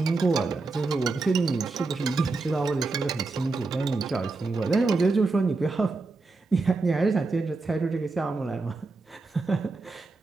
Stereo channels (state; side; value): quieter; left; 3.7 dB